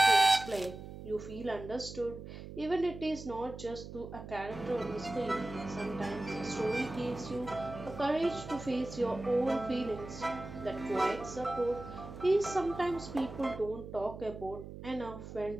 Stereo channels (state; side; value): noise; right; hum, 12 dB below the sound